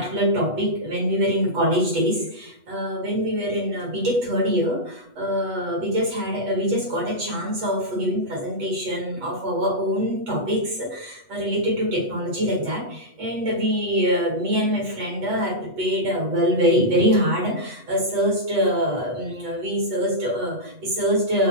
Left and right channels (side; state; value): left; late; 8.2 ms